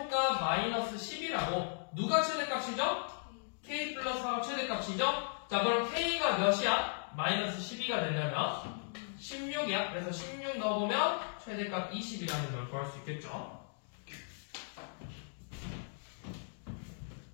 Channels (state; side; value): silent; right; digital silence